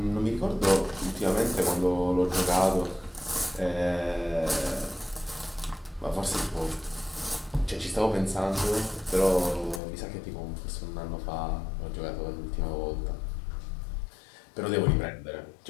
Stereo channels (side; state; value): right; drops out; at 9.8 s